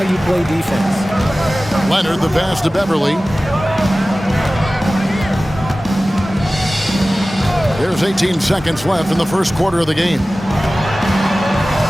you play defense. Leonard, the pass to Beverly. There's 18 seconds left in the first quarter of the game.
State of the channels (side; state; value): both; normal; correlation 0.97